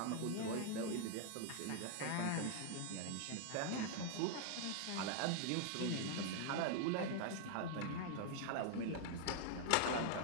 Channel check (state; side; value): different; both; correlation 0.00